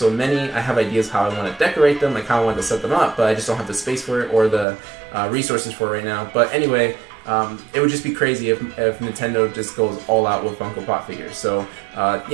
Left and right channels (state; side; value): drops out; left; at 4.7 s